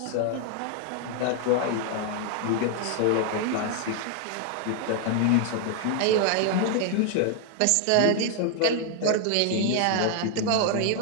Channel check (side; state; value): both; different; correlation 0.00